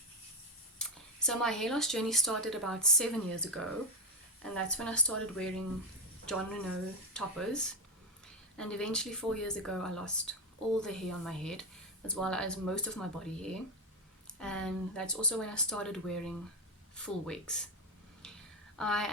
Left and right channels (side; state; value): both; normal; correlation 0.09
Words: So my hair loss journey started about 7 years ago, and that's when I started wearing Jon Renau toppers. And eventually 4 years ago I lost all the hair on my head as well as most of my body hair, and that's also when I started wearing full wigs. I